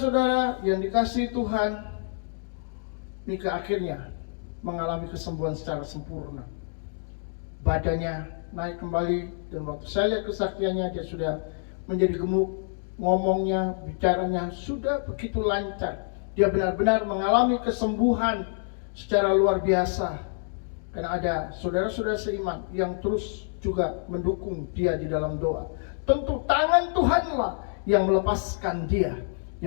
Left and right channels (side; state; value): right; silent; digital silence